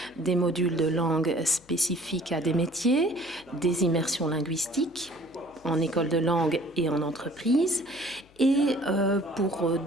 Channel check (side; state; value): left; noise; hum, 29 dB below the sound